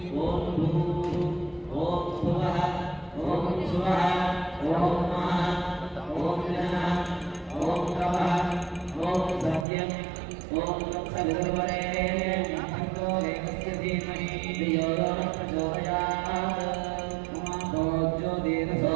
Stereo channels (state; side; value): drops out; left; at 9.7 s